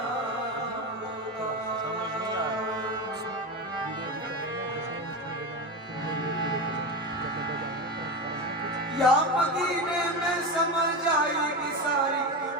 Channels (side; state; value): both; normal; correlation 0.20